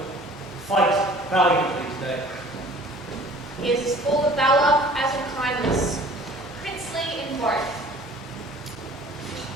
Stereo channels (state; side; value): normal; both; correlation 0.49